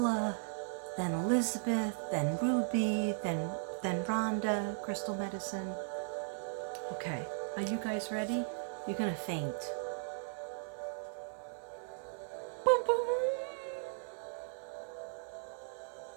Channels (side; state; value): left; silent; 53 dB below the other